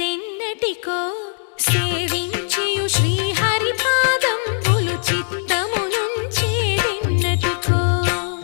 సేవించియు శ్రీహరి పాదంబులు చిత్తమునుంచేదెన్నటికో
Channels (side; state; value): right; silent; 60 dB below the other